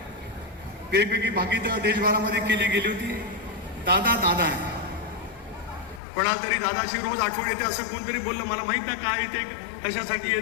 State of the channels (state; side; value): drops out; right; at 6.0 s